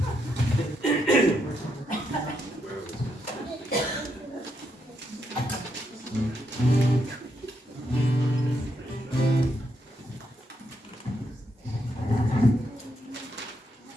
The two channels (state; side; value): normal; both; correlation 0.79